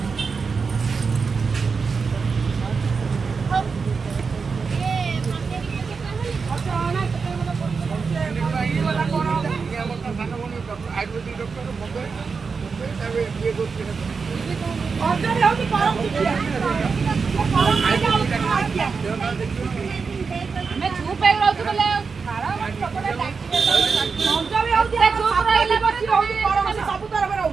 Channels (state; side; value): quieter; left; 5.1 dB